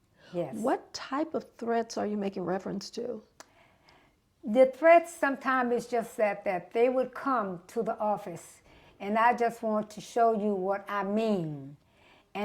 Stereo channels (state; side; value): identical; both; correlation 1.00